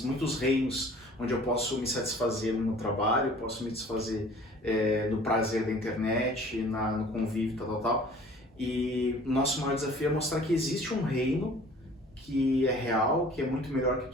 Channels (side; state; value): both; normal; correlation 0.49